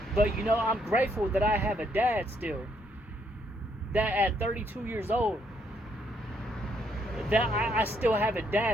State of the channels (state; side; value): normal; both; correlation 0.72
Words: But, you know, I'm grateful that I have a dad still. That at 32 years old, that I still have a